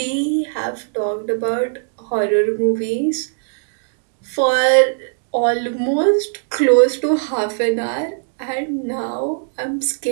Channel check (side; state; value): left; silent; digital silence